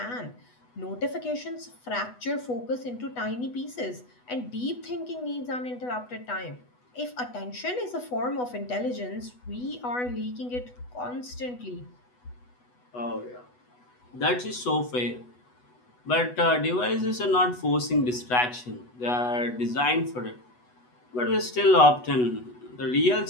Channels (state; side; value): late; right; 8.1 ms